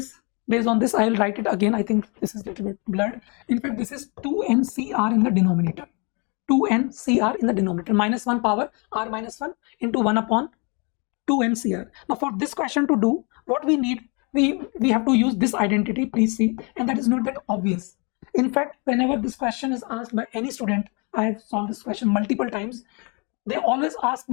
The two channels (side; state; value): right; quieter; 32.9 dB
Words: based on this. I will write it again. I think this is a little bit blurred. In fact, this is 2NCR in the denominator. 2NCR in the denominator. Minus 1 power r minus 1 into 1 upon 2NCR. Now for this question to do, what we need, we have to use this identity, please see, and that is not that obvious. In fact, whenever this question is asked by any student, I have solved this question multiple times, they always ask